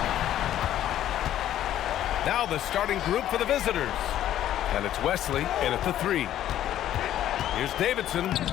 Now the starting group for the visitors. And it's Wesley in at the 3. Here's Davidson,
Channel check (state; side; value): quieter; right; 12.0 dB